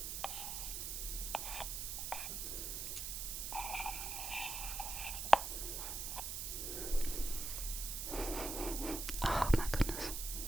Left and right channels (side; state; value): right; noise; hiss, 3 dB below the sound